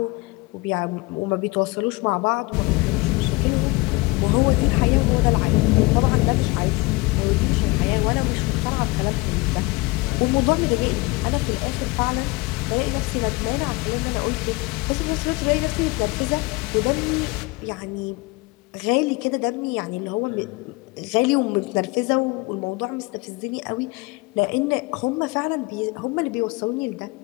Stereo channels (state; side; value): quieter; right; 24.0 dB